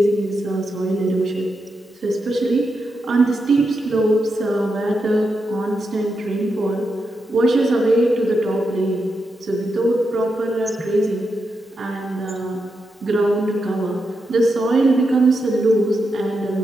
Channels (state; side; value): normal; both; correlation 0.86